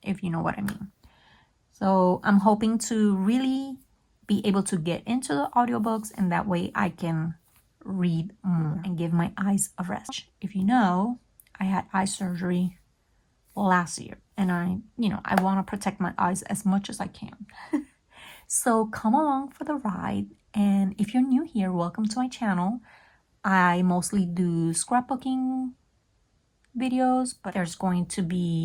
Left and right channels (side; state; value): both; identical; correlation 1.00